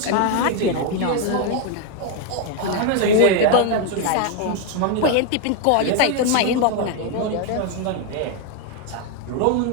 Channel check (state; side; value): different; both; correlation 0.01